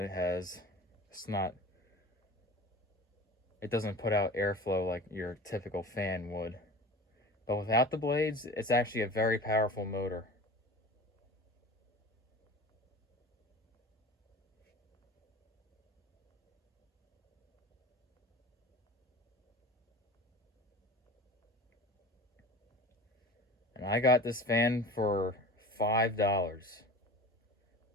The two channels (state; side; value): normal; both; correlation 0.37